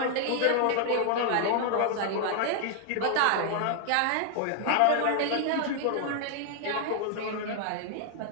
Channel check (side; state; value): both; different; correlation 0.00